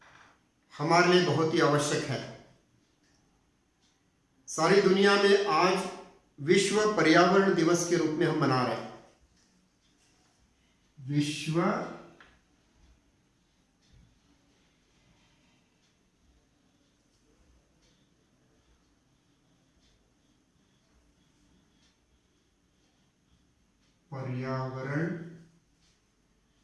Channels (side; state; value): both; identical; correlation 1.00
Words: हमारे लिए बहुत ही आवश्यक है। सारी दुनिया में आज विश्व पर्यावरण दिवस के रूप में हम मना रहे हैं। विश्व पर्यावरण